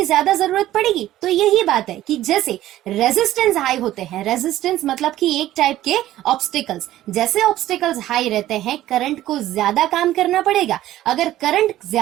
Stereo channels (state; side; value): quieter; left; 14.1 dB